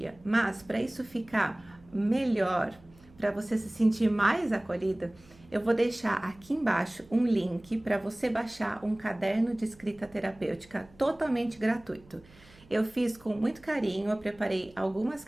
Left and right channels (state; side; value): noise; right; hum, 26 dB below the sound